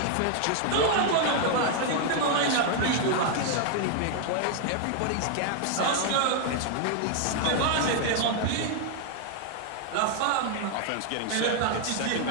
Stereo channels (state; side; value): different; both; correlation 0.00